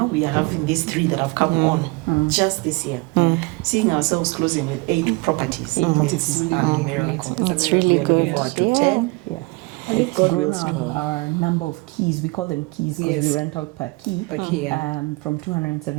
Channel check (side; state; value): left; quieter; 25.4 dB